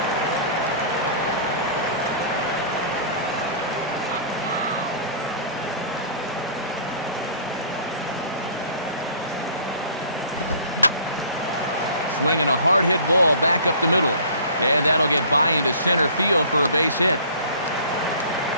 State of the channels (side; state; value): both; inverted; correlation -0.47